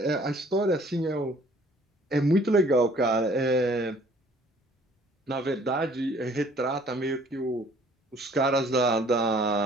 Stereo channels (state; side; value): normal; both; correlation 0.57